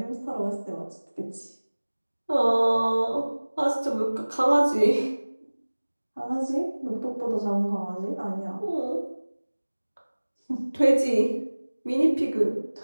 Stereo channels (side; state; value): both; inverted; correlation -1.00